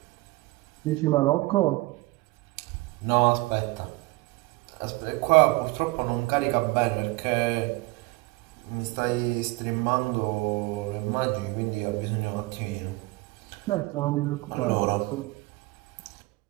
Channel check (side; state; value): left; quieter; 22.4 dB